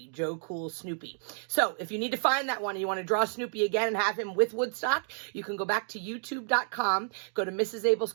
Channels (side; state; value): left; silent; 58 dB below the other